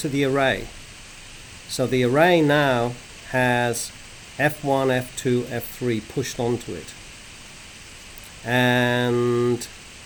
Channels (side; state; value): both; identical; correlation 1.00